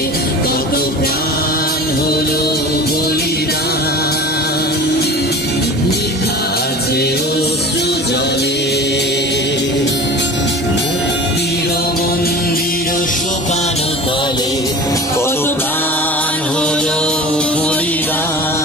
কত প্রাণ হলো বলিদান লেখা আছে অশ্রু জলে মুক্তির মন্দির শোকানো তলে কত প্রাণ হলো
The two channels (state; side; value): normal; both; correlation 0.37